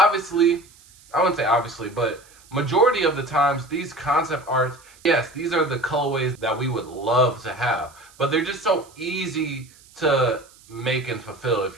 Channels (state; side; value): noise; right; hiss, 26 dB below the sound